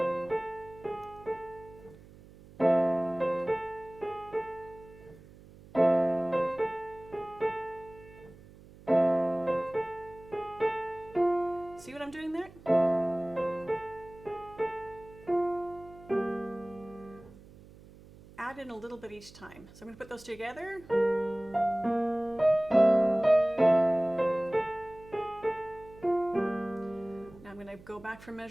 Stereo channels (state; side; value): noise; right; hum, 21 dB below the sound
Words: See what I'm doing there? Add in a little bit each time. So I'm going to put those together. Now I'm going to go back from